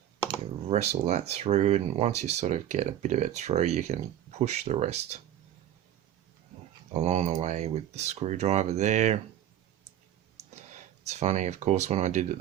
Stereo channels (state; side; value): quieter; left; 11.4 dB